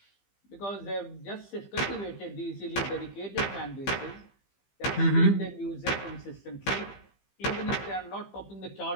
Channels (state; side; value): late; right; 15 ms